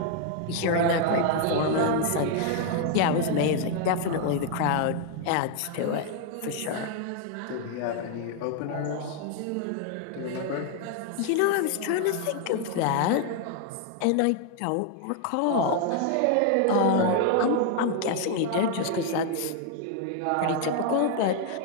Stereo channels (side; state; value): both; different; correlation 0.00